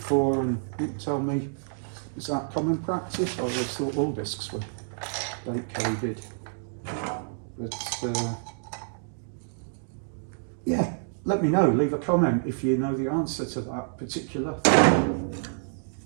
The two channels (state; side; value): silent; left; digital silence